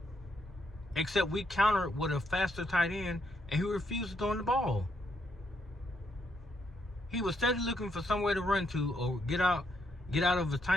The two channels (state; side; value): normal; both; correlation 0.76